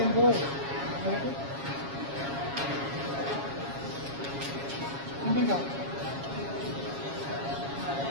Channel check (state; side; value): late; left; 7.3 ms